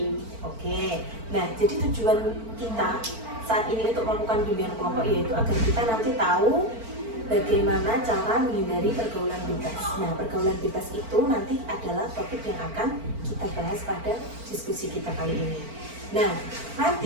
Oke, nah jadi tujuan kita saat ini untuk melakukan bimbingan kelompok yaitu agar kita nanti tahu bagaimana cara menghindari pergaulan bebas. Nah, pergaulan bebas itu nanti adalah topik yang akan kita bahas pada diskusi kita kali ini. Nah,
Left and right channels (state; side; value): late; left; 4.4 ms